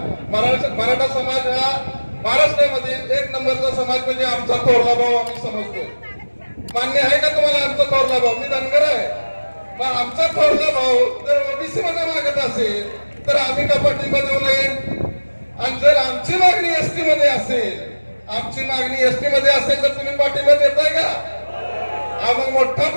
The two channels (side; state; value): both; inverted; correlation -1.00